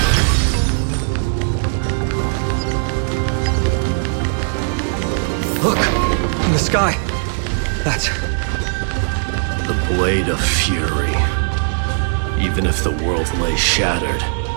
Look, in the sky. That's the blade of fury. Even if the world lay shattered,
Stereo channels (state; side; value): silent; left; digital silence